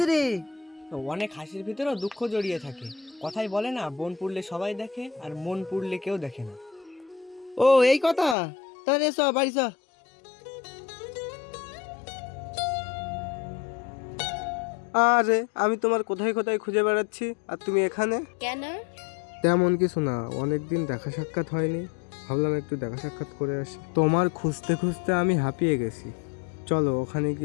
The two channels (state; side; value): drops out; right; at 8.3 s